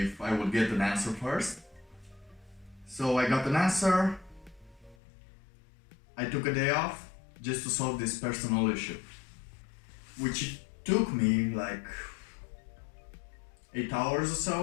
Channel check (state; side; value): drops out; right; at 5.0 s